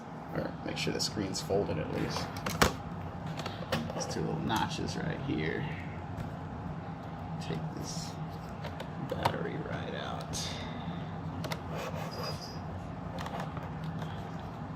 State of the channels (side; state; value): both; identical; correlation 1.00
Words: or make sure the screen's folded at least. These two little notches right here. Take this battery right out.